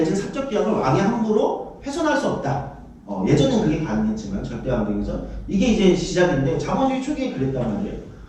사적 계약을 왕이 함부로 훼손할 수 없다. 예전엔 그게 가능했지만 절대 왕정에서 이게 이제 시작인데 자본주의 초기에 그랬단 말이에요.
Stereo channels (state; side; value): identical; both; correlation 1.00